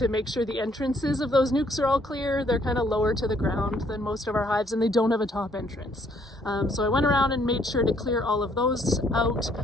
make sure the entrances of those nukes are all clear. They're kind of lower to the ground than most of our hives, and they don't have a top entrance. So I went around and made sure to clear all of those out.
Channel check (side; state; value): both; normal; correlation 0.66